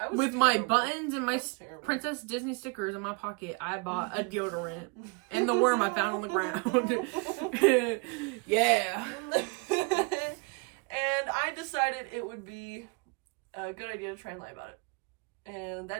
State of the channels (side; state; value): left; quieter; 31.9 dB